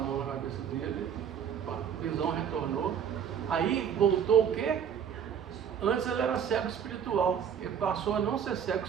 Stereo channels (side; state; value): left; quieter; 8.2 dB